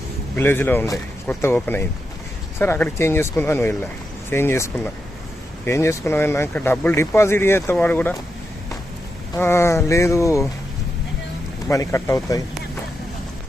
విలేజ్లో ఉండే కొత్త ఓపెన్ అయింది. సరే అక్కడికి చేంజ్ చేసుకుందామని వెళ్ళా. చేంజ్ చేసుకున్నాం అన్నాక డబ్బులు డిపాజిట్ చేస్తే వాడు కూడా లేదు మనీ కట్ అవుతాయి.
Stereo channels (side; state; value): both; normal; correlation 0.86